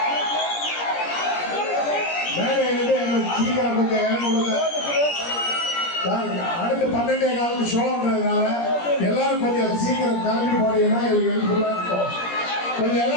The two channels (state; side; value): late; right; 17 ms